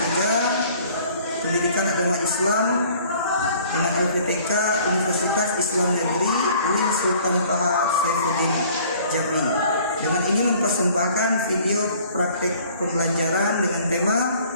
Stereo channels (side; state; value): both; inverted; correlation -0.54